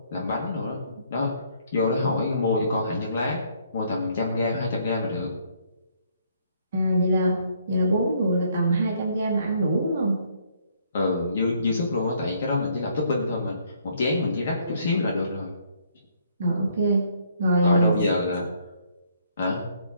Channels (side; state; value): both; inverted; correlation -0.66